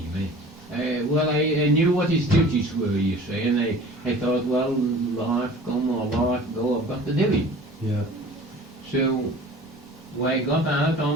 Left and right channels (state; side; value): normal; both; correlation 0.44